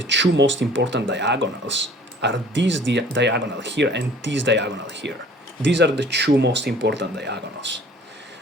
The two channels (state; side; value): normal; both; correlation 0.51